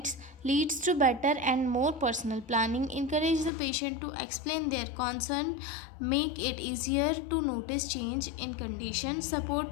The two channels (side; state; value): right; drops out; at 3.5 s